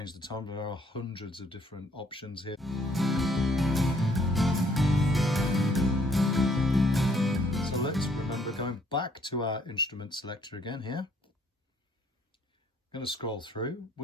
the tone. There are hundreds of different options here. So let's remember going back to our instrument selector again here. I'm going to scroll through.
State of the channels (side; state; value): both; normal; correlation 0.65